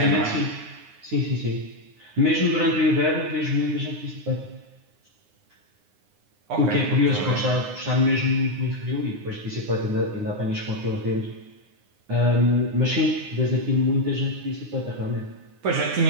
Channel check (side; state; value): left; late; 9.7 ms